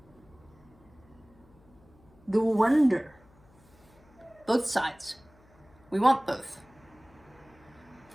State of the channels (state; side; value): noise; left; hum, 28 dB below the sound